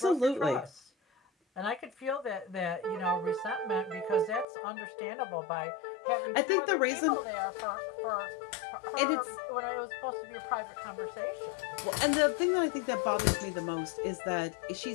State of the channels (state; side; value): drops out; right; at 4.5 s